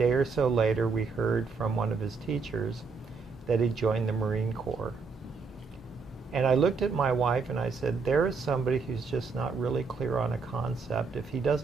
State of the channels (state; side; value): quieter; left; 4.7 dB